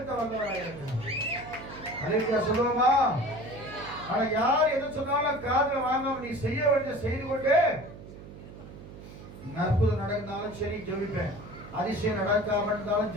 வந்தவனாய் இருக்கிறான். அலையா சொல்லுவோமா? ஆனா யார் எது சொன்னாலும் காதுல வாங்காம நீ செய்ய வேண்டிய செய்து கொண்டு, அற்புதம் நடந்தாலும் சரி ஜெபிப்பேன், அதிசயம் நடக்காம இருந்தாலும்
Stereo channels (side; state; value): right; noise; hum, 15 dB below the sound